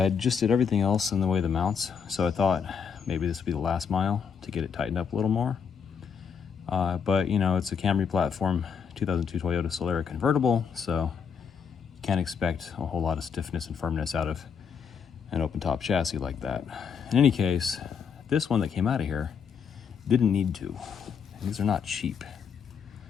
just did everything else in the way of the mounts, so I thought maybe this would be the last mile to get it tightened up a little more. But you know, it's a Camry platform, 2002 Toyota Solara convertible, so you can't expect a whole lot of stiffness and firmness out of an open top chassis like that. In any case, this one that came out of here didn't need to. And these are not cheap.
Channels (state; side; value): quieter; right; 6.7 dB